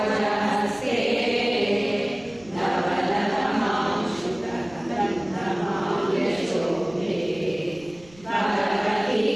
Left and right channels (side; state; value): right; noise; rumble, 25 dB below the sound